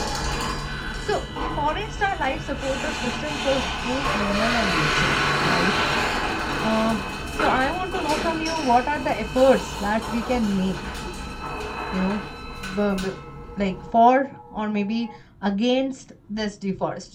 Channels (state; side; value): identical; both; correlation 1.00